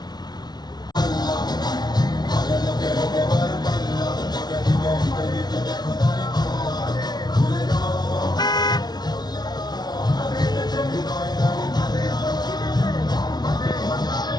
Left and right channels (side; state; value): right; late; 0.19 ms